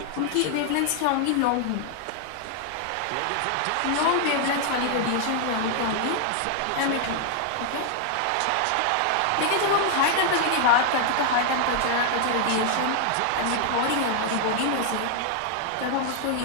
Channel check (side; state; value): both; different; correlation 0.00